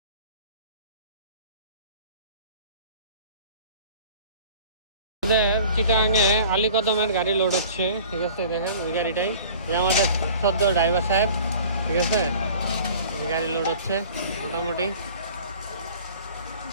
চিটাগাঙে আলীকদমের গাড়ি লোড হচ্ছে, ঠিক আছে? দেখেন ওই গাড়িটাই, যে আমাদের সদ্য ড্রাইভার সাহেব, ঠিক আছে? গাড়ি লোড হচ্ছে মোটামুটি।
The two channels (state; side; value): inverted; both; correlation -0.46